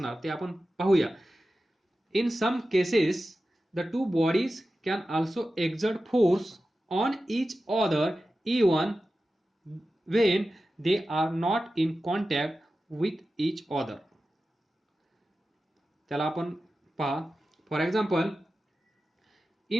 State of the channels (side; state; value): both; normal; correlation 0.93